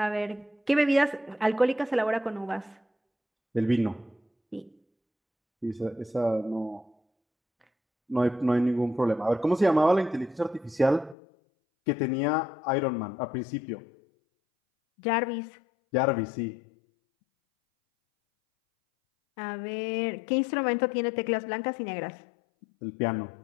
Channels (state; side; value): drops out; right; at 11.2 s